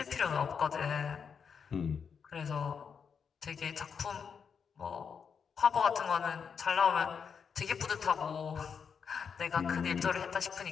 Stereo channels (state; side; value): quieter; right; 6.5 dB